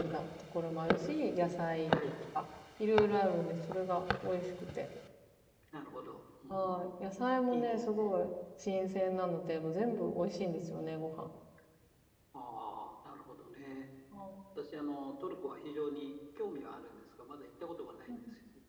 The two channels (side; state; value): both; identical; correlation 1.00